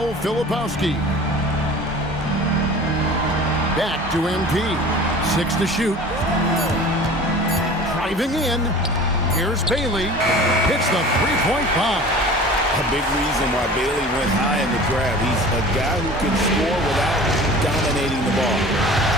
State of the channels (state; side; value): normal; both; correlation 0.41